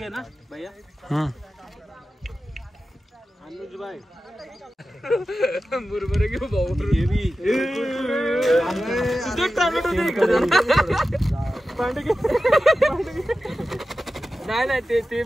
ना भैया. बरोबर घेऊ भाऊ. नाही ते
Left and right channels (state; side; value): normal; both; correlation 0.93